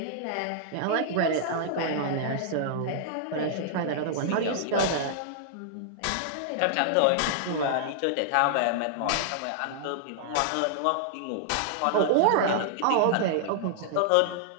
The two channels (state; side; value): different; both; correlation -0.01